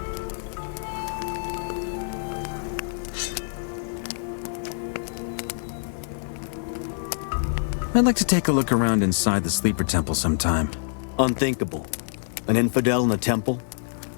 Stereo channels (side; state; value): right; silent; digital silence